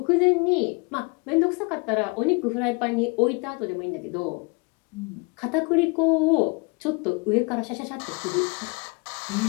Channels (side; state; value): right; quieter; 31.0 dB